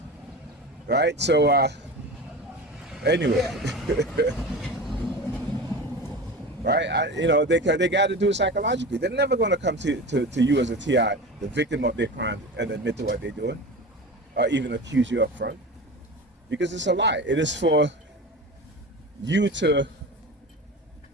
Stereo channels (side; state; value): both; normal; correlation 0.30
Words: Right, so anyway. Right, you know, they got to do it psychologically. They're never going to come to you as a TI, the victim of their crime, and admit to what they're doing, or even accuse you up front, because it's a lie. It is for you to